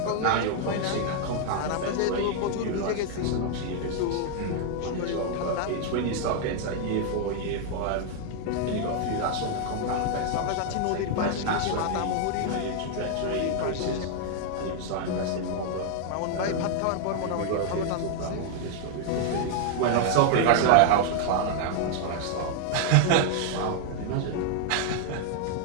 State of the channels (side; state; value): both; different; correlation 0.00